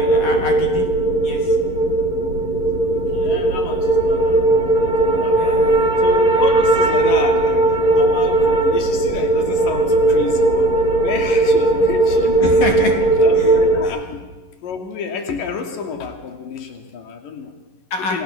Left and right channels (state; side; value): late; right; 11 ms